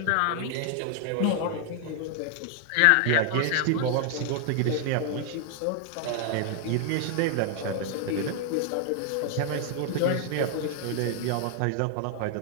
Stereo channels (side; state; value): both; different; correlation 0.00